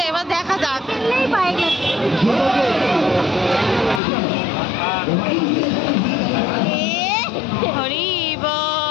এবার দেখা যাক। পাই হরি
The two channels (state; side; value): drops out; right; at 4.0 s